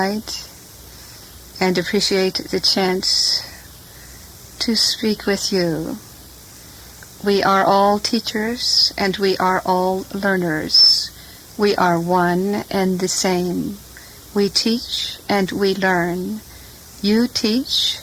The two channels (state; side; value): identical; both; correlation 1.00